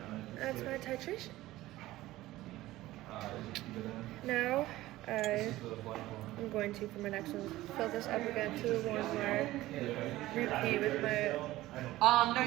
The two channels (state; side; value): quieter; left; 16.7 dB